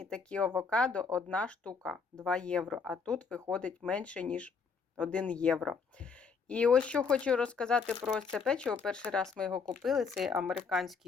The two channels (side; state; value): right; quieter; 5.4 dB